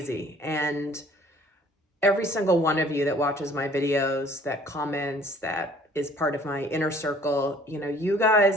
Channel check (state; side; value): normal; both; correlation 0.55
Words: And every single one of you that watches my videos, that comments, that is part of my inner circle, you